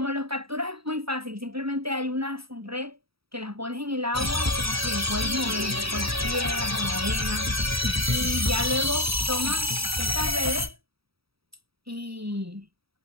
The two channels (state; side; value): late; left; 0.76 ms